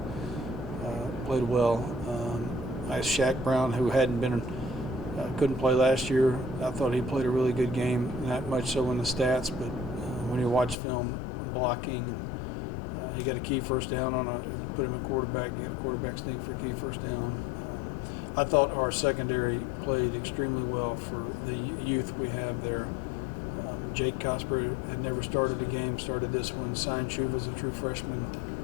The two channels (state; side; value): drops out; right; at 10.8 s